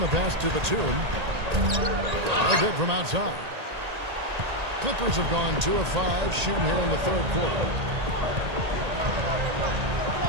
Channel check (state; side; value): late; left; 1.8 ms